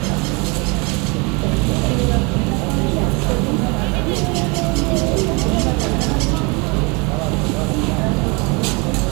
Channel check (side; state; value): left; quieter; 29.4 dB